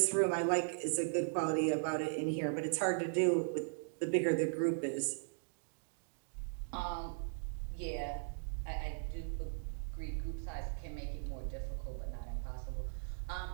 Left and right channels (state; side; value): silent; left; digital silence